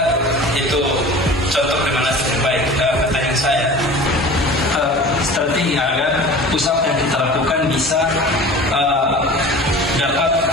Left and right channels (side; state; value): both; normal; correlation 0.39